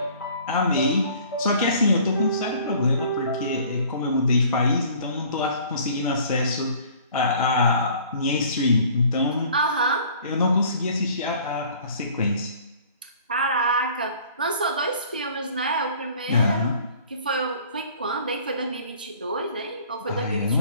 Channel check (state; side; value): inverted; both; correlation -0.51